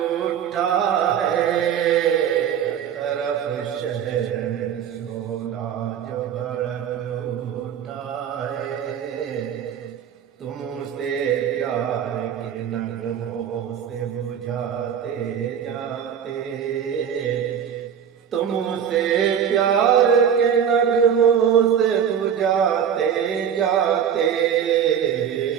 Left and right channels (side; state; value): left; quieter; 8.6 dB